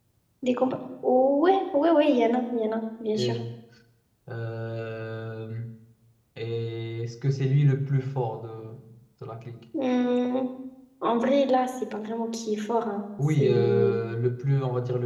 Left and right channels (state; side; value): identical; both; correlation 1.00